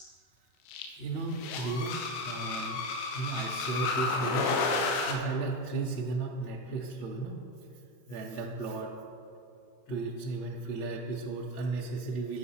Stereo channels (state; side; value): late; right; 32 ms